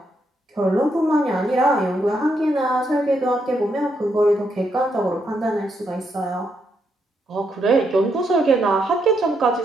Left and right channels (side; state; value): both; normal; correlation 0.78